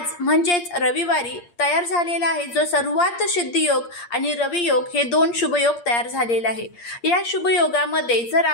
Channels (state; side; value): late; right; 8.6 ms